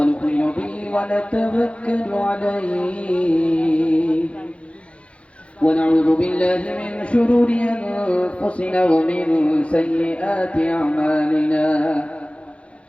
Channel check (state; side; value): late; right; 0.061 ms